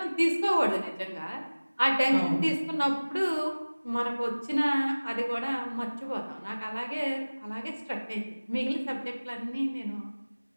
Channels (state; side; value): inverted; both; correlation -1.00